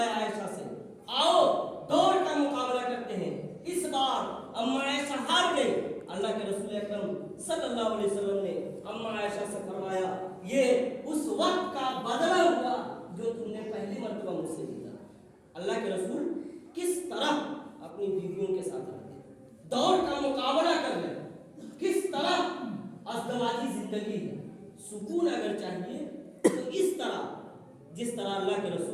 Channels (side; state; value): both; identical; correlation 1.00